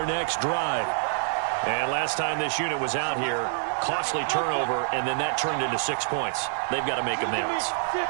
next drive. And last time this unit was out here, costly turnover, and then that turned into 6 points. They've got to make amends.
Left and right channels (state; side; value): silent; left; digital silence